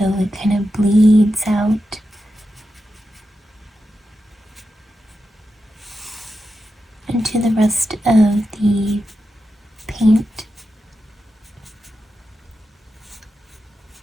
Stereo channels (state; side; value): normal; both; correlation 0.89